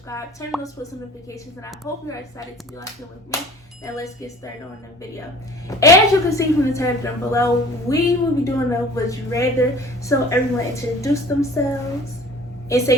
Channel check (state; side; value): normal; both; correlation 0.46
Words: Turn on those post notifications, and I hope you're excited to be watching with me. Now let's get started on the video. As you can see from the title down below, we will be doing a Would You Rather. So everyone introduce themselves and